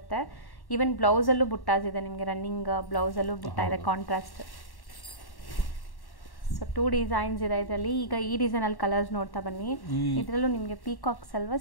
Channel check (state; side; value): late; right; 1.1 ms